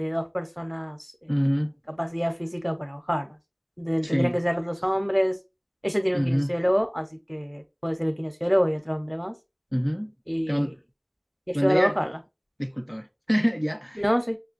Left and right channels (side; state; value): both; identical; correlation 1.00